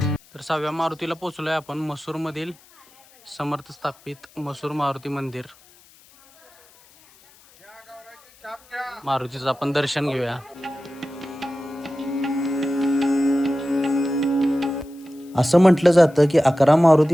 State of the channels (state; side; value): noise; left; hiss, 27 dB below the sound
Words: तर 6व्या मारुतीला पोहोचलोय आपण. मसूरमधील समर्थ स्थापित मसूर मारुती मंदिर. मारुतीचं आपण दर्शन घेऊया. असं म्हटलं जातं की 11